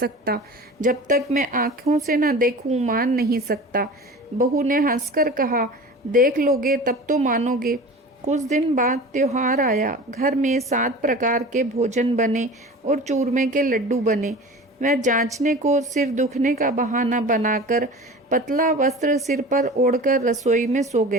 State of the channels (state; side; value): normal; both; correlation 0.37